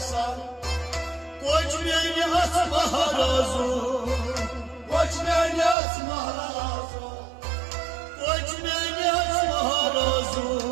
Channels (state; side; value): drops out; left; at 5.8 s